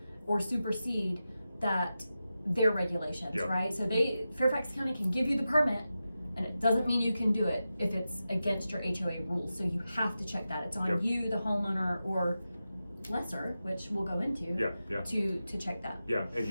or supersede that their regulations, right? So Fairfax County can give you the permit, and it doesn't mean you can do it if it's against your HOA rules. So you have to check that. It's on you, the homeowner, or lesser, which we'll go into, to check that. Yeah, and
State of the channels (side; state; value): both; inverted; correlation -0.92